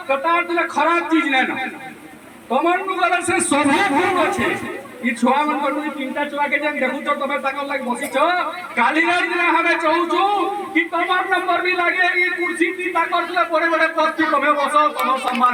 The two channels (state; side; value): identical; both; correlation 1.00